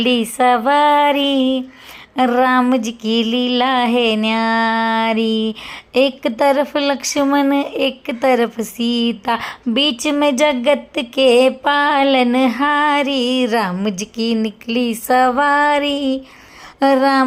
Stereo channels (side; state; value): both; identical; correlation 1.00